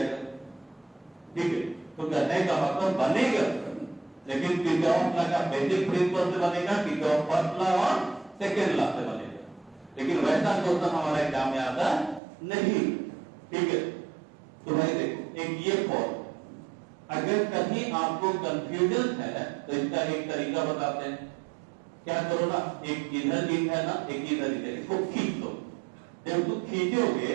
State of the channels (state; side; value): drops out; left; at 12.2 s